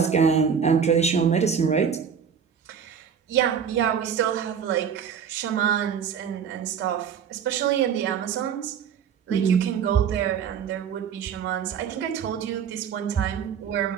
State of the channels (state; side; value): quieter; left; 7.4 dB